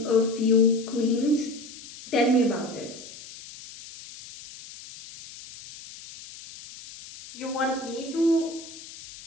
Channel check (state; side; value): noise; left; hiss, 16 dB below the sound